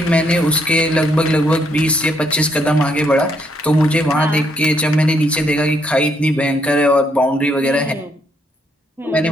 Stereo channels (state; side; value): normal; both; correlation 0.73